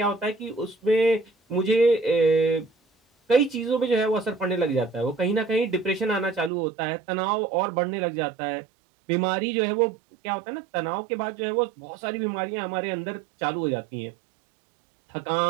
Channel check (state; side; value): drops out; left; at 6.5 s